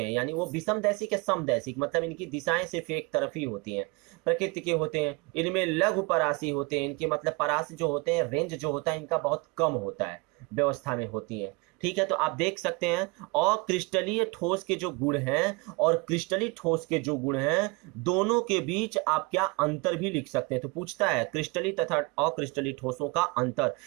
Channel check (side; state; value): left; quieter; 27.6 dB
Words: यानी वो विषमदैशिक या समदैशिक, मतलब इनकी दिशाएं सिर्फ एक तरफ ही होती हैं, प्रकृति के होते हैं, इनमें लघु परासी होते हैं, इनके मतलब परासी जो होते हैं, रेंज जो होता है इनका बहुत कम होता है, व्यवस्था में होती है। ठीक है, तो आप देख सकते हैं अक्रिस्टलीय ठोस के जो गुण हैं और क्रिस्टलीय ठोस के जो गुण हैं, दोनों के बीच आप क्या अंतर भी लिख सकते हैं। तो पूछता है क्रिस्टलीय तथा अक्रिस्टलीय ठोसों का अंतर,